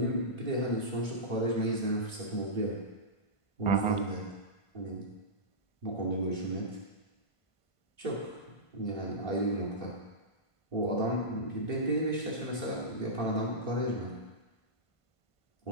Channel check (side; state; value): right; late; 1.5 ms